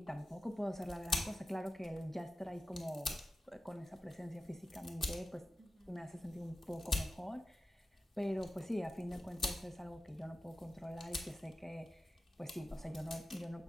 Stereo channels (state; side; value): normal; both; correlation 0.94